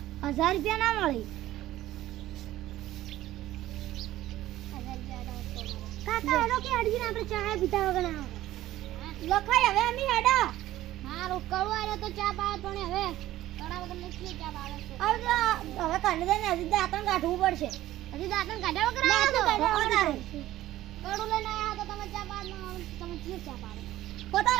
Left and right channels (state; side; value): quieter; left; 14.9 dB